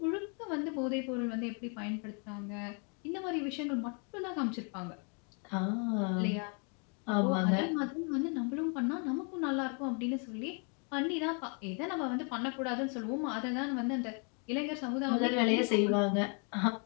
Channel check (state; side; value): quieter; right; 38.6 dB